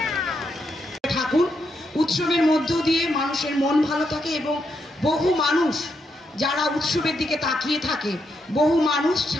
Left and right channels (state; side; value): normal; both; correlation 0.81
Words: ঠাকুর উৎসবের মধ্য দিয়ে মানুষের মন ভালো থাকে এবং বহু মানুষ যারা উৎসবের দিকে তাকিয়ে থাকে, বহু মানুষ